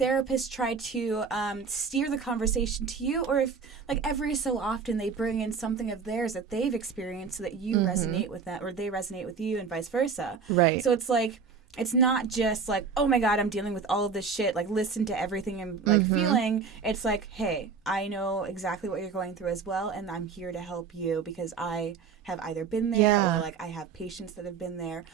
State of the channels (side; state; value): left; quieter; 5.5 dB